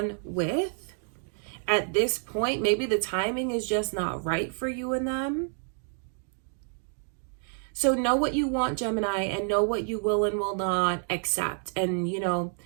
with at this point. Maybe the timing is just not right for you and them. So know what you want, Gemini, and know what you will and will not accept. And, you know,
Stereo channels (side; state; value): left; silent; 56 dB below the other